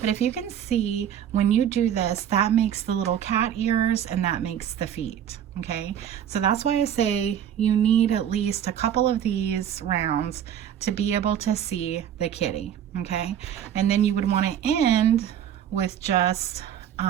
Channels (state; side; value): quieter; left; 9.8 dB